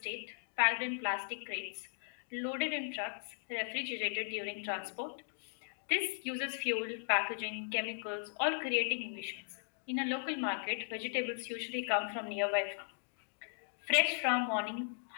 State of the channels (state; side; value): silent; right; digital silence